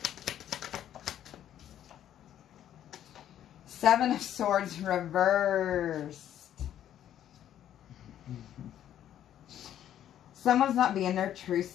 Seven of Swords reversed. Someone's not being their true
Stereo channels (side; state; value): right; quieter; 11.0 dB